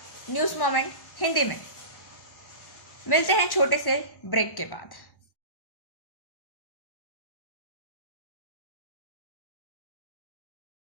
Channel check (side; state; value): right; late; 1.1 ms